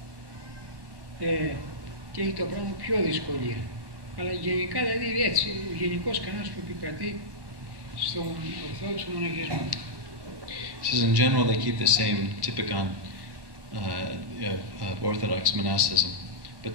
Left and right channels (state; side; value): late; left; 1.2 ms